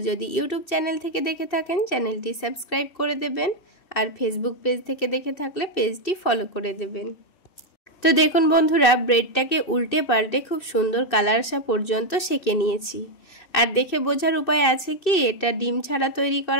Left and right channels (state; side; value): late; right; 2.6 ms